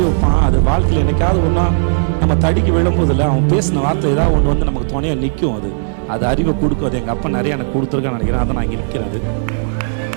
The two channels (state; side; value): silent; left; digital silence